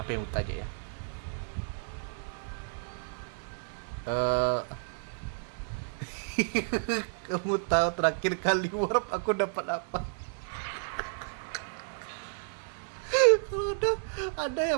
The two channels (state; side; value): silent; left; digital silence